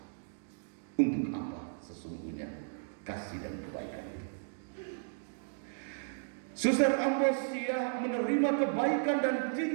Untuk apa sesungguhnya kasih dan kebaikan itu? Suster Ambrosia menerima kebaikan dan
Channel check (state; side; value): silent; left; digital silence